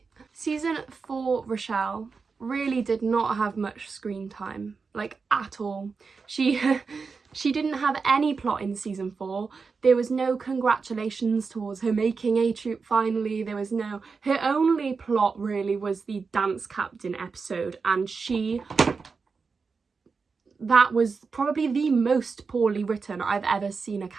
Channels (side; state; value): left; quieter; 4.9 dB